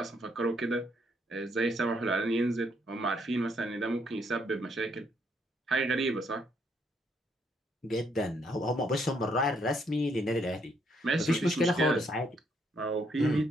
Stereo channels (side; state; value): both; normal; correlation 0.72